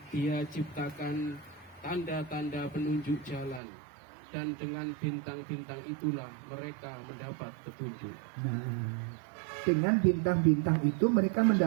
dia ciptakan tanda-tanda penunjuk jalan, dan dengan bintang-bintang itulah mereka mendapat petunjuk. Nah, dengan bintang-bintang itu mereka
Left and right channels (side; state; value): left; drops out; at 3.6 s